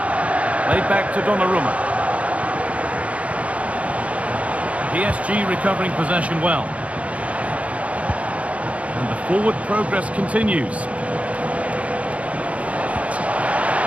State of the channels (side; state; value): left; late; 0.065 ms